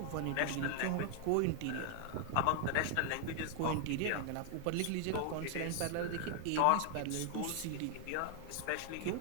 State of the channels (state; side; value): different; both; correlation 0.00